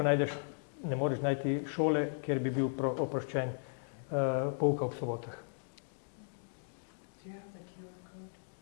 najdeš, ne moreš najti šole, kjer bi bil oproščen pouka ob sobotah. Do you have the QR code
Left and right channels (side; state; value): right; silent; digital silence